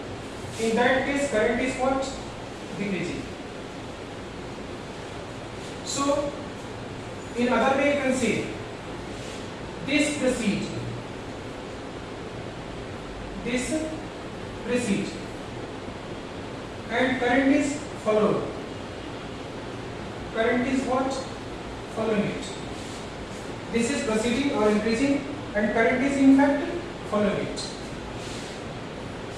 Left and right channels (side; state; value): both; identical; correlation 1.00